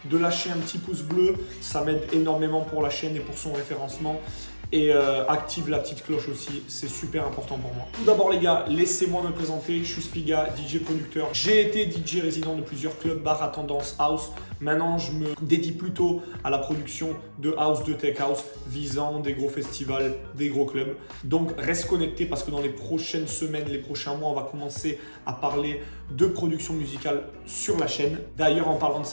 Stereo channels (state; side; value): inverted; both; correlation -1.00